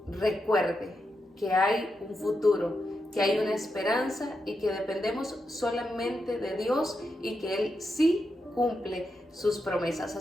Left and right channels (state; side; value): normal; both; correlation 0.86